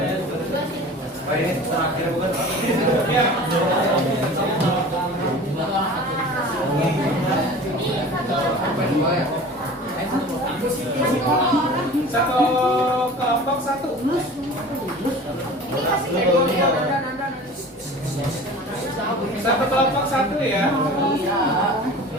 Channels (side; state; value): both; normal; correlation 0.40